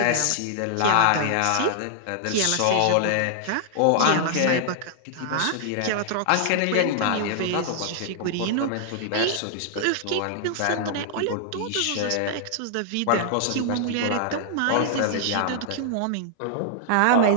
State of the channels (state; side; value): different; both; correlation -0.01